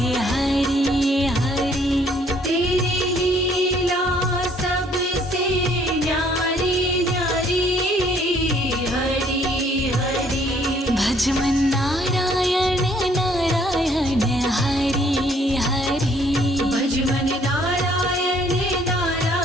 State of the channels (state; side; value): normal; both; correlation 0.62